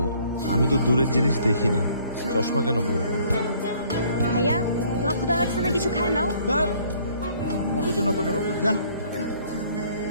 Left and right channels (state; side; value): inverted; both; correlation -0.60